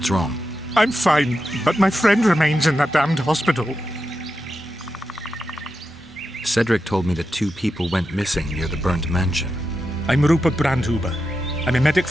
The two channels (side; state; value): both; normal; correlation 0.88